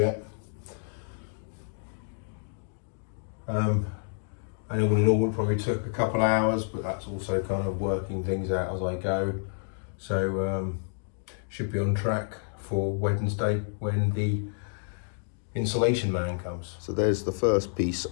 And all in all, it probably took a couple of hours, but that's also kind of working things out as I go. So should be on track for Wednesday when the insulation man comes. So there's the first piece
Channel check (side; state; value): right; silent; digital silence